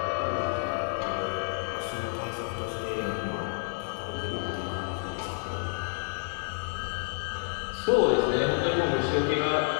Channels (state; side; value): silent; right; 58 dB below the other